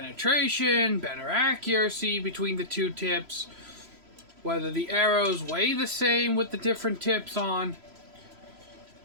better accuracy between the two tips, whether the arrows weigh the same with the different tips on.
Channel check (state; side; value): late; left; 3.0 ms